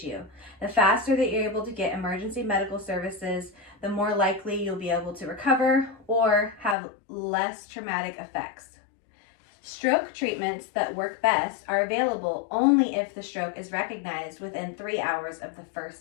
The faster that you're able to get emergency medical services, the more likely you'll be able to recover or have less traumatic effects. Stroke treatments that work best are available only if the stroke is recognized within 3 hours of the first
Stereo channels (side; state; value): right; drops out; at 6.8 s